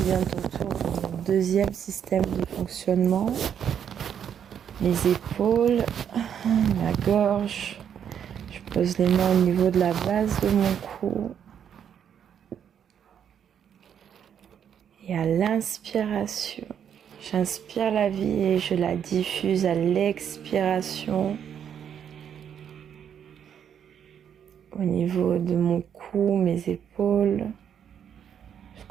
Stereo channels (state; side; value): quieter; left; 8.6 dB